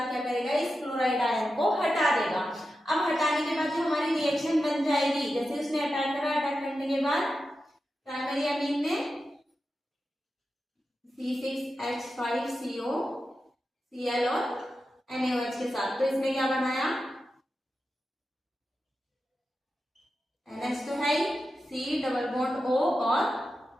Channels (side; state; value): both; normal; correlation 0.90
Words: क्या करेगा, इस क्लोराइड आयन को हटा देगा। अब हटाने के बाद जो हमारी रिएक्शन बन जाएगी, जैसे उसने अटैक करा, अटैक करने के बाद प्राइमरी एमीन ने C6H5CO Cl और NaOH के साथ, तो इसने क्या बनाया, NH तो है, C डबल बॉन्ड O और